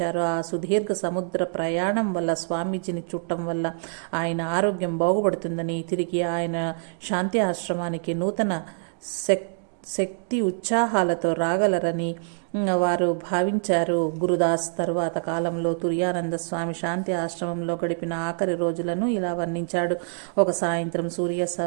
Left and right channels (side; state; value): left; silent; digital silence